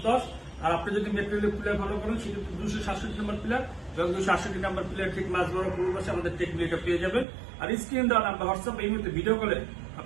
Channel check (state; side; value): drops out; left; at 7.2 s